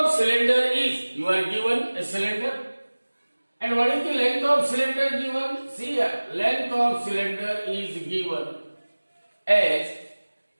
cylinder is, you are given a cylinder, and what is the length of cylinder given? See here, length of cylinder is given as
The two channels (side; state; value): both; inverted; correlation -1.00